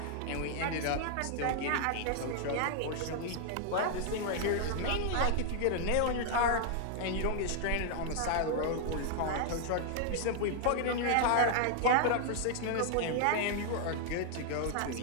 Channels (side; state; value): both; different; correlation 0.00